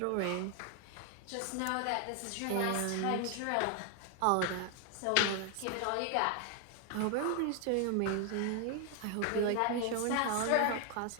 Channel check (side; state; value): both; different; correlation 0.00